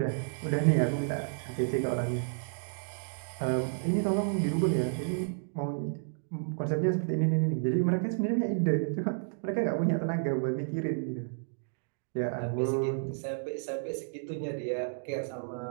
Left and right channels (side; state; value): left; silent; digital silence